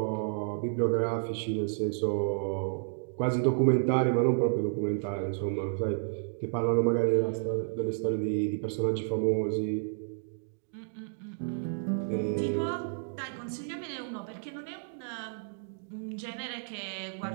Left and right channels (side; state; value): left; silent; digital silence